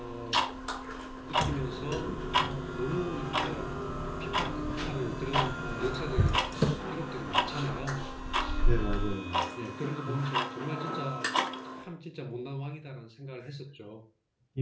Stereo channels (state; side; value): identical; both; correlation 1.00